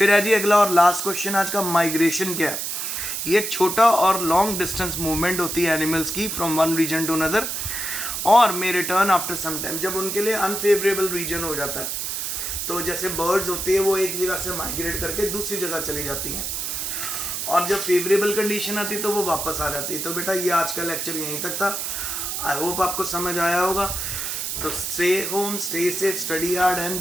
है जी अगला और लास्ट क्वेश्चन आज का, माइग्रेशन क्या है। ये छोटा और लॉन्ग डिस्टेंस मूवमेंट होती है एनिमल्स की from one region to another, और may return after some time, जब उनके लिए अनफेवरेबल रीजन हो जाता है। तो जैसे बर्ड्स होती है वो एक जगह से माइग्रेट करके दूसरी जगह चली जाती हैं, और जब फेवरेबल कंडीशन आती तो वो वापस आ जाती है। तो बेटा ये आज का लेक्चर यहीं तक था, आई होप आपको समझ आया होगा। तो stay home, stay safe, study hard and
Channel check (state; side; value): noise; right; hiss, 3 dB below the sound